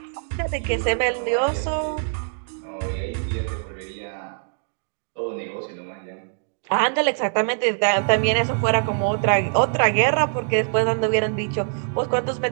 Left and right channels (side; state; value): left; silent; digital silence